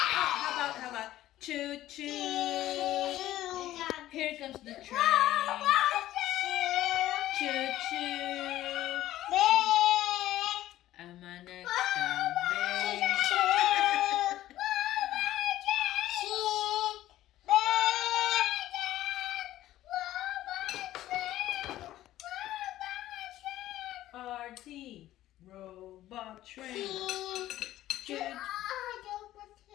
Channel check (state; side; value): quieter; right; 14.3 dB